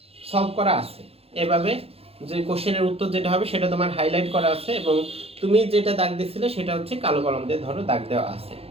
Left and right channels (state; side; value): late; left; 0.29 ms